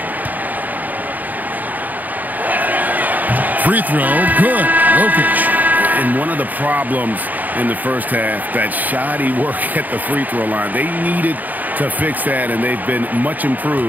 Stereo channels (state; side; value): late; left; 0.082 ms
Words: Free throw, good. Jokic. And one of the problems in the first half, that shoddy work at the free throw line. They needed to fix that, and they've been much